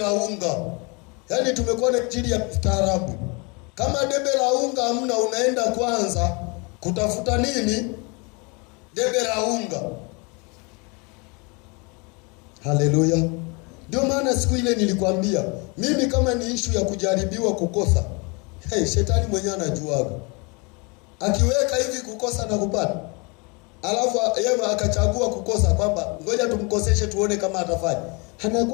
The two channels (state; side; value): quieter; right; 30.5 dB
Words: unga. Yaani tumekuwa na injili ya staarabu. Kama debe la unga hamna, unaenda kwanza kutafuta nini? Debe la unga. Haleluya. Ndio maana siku ile nilikwambia, mimi kama ni issue ya kujaribiwa kukosa, shetani mwenyewe anajuaga. Akiweka hivi kukosa na kupata, alafu yeye akachagua kukosa, kwamba ngoja tumkoseshe tuone kama atafanya,